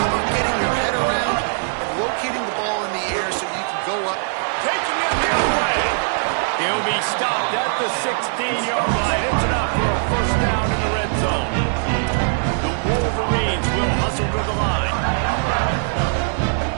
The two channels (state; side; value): silent; left; digital silence